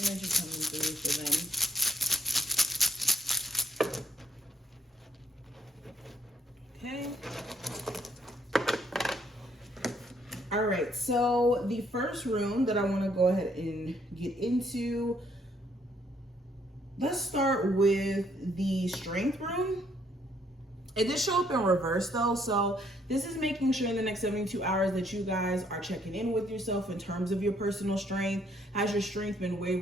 coming through for them? Okay. All right, so the first rune that I want to go ahead and get into, let's start with the Strength rune. It did show up in reverse though, so this is making sure in the next 72 hours that you guys are checking in with yourself in terms of your personal strength. Has your strength been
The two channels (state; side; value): normal; both; correlation 0.68